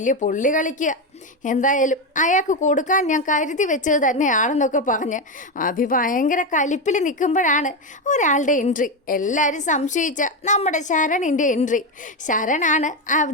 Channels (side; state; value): both; normal; correlation 0.11